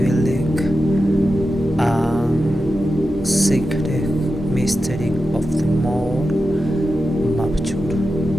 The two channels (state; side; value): normal; both; correlation 0.91